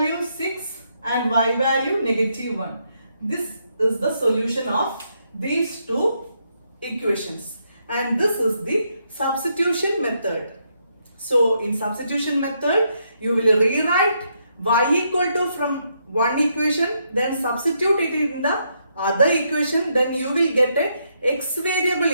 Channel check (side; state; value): both; inverted; correlation -0.77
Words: 6 and y value -1. This is the solution of these two equations, and this is the substitution method. So in substitution method, you will rewrite y equal to from one equation, then substitute it in the other equation, then you will get a x variable